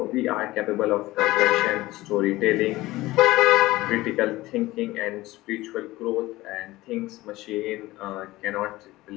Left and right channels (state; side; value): quieter; right; 18.4 dB